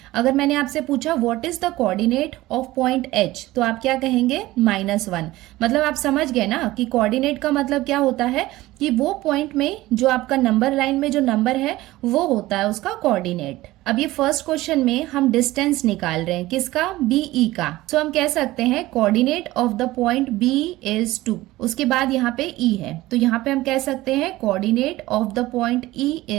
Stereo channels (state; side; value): quieter; left; 17.7 dB